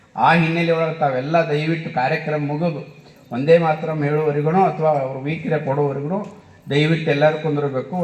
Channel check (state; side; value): identical; both; correlation 1.00